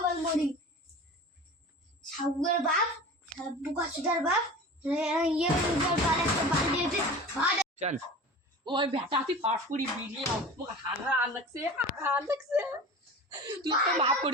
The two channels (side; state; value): both; normal; correlation 0.35